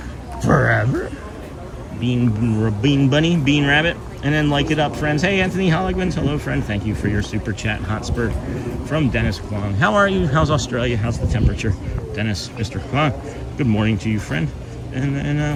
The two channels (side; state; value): both; identical; correlation 1.00